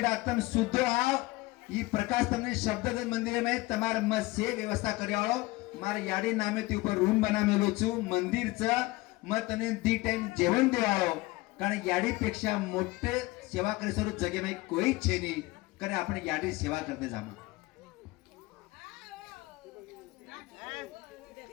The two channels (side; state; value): right; quieter; 20.9 dB